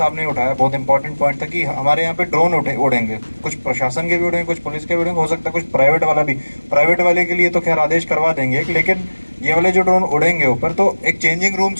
ने उठाया, बहुत इंपॉर्टेंट पॉइंट था कि हमारे यहाँ पे ड्रोन उड़ेंगे, कुछ प्रशासन के भी उड़ेंगे, कुछ पुलिस के भी उड़ेंगे, हो सकता है कुछ प्राइवेट वाला भी। प्राइवेट वाले के लिए तो खैर आदेश करवा देंगे, लेकिन ये वाले जो ड्रोन उड़ेंगे ऊपर, तो एक चेंजिंग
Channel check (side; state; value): both; inverted; correlation -1.00